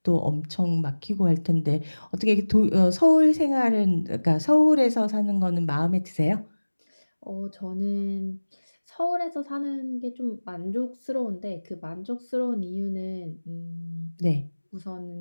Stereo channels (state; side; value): inverted; both; correlation -1.00